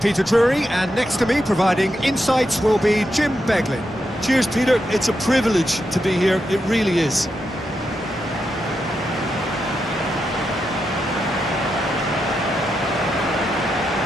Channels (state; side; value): normal; both; correlation 0.85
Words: Drury, and next to me providing insights will be Jim Beglin. Cheers, Peter. It's a privilege to be here. It really is.